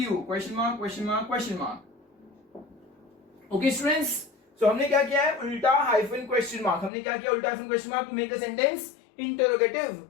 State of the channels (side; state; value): right; drops out; at 6.9 s